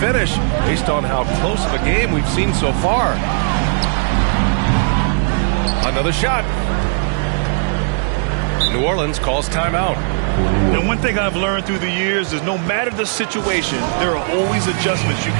based on how close of a game we've seen so far. Another shot. New Orleans calls timeout. Now, one thing I've learned through the years is no matter the situation, there are always adjustments you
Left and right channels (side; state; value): left; silent; 68 dB below the other